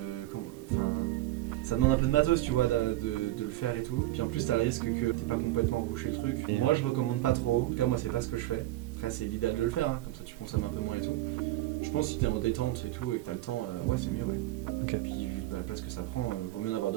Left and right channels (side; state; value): left; quieter; 16.5 dB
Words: ça demande un peu de matos, tu vois, de le faire et tout. Puis en plus, t'as le risque que t'aies pas complètement rebouché le truc. Moi, je recommande pas trop. En tout cas, moi, c'est pas ce que je fais. Après, c'est l'idéal de le faire, hein. Comme ça, tu consommes un peu moins et tout. Je pense que si t'es en détente et tout et que t'as le temps, ouais, c'est mieux, ouais. Okay. Puis vu la place que ça prend, vaut mieux en avoir